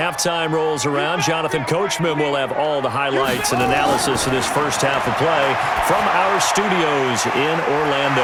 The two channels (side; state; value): both; identical; correlation 1.00